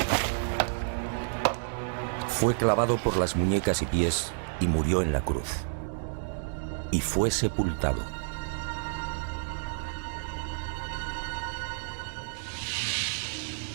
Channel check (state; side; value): silent; left; digital silence